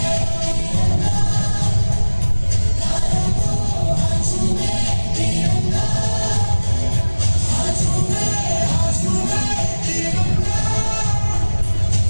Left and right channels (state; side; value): inverted; both; correlation -1.00